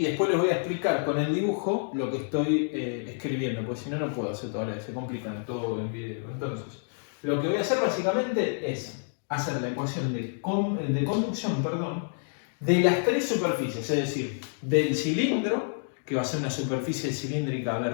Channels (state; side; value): silent; right; digital silence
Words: después les voy a explicar con el dibujo lo que estoy escribiendo, porque si no, no puedo hacer todo a la vez, se complican todo en video. Entonces, lo que voy a hacer básicamente es hacer la ecuación de conducción, de las tres superficies, es decir, del cilindro, que va a ser una superficie cilíndrica